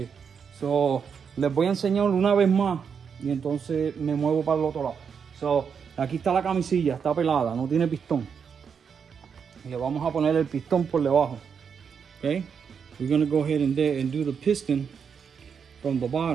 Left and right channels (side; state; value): left; quieter; 6.7 dB